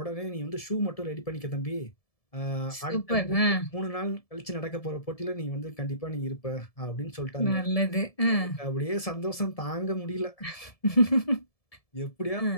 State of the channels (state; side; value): late; right; 1.7 ms